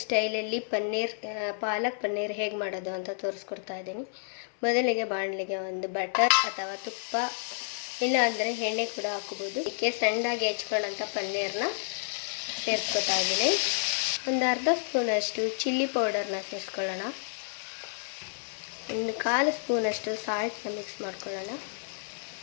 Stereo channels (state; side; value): silent; right; 58 dB below the other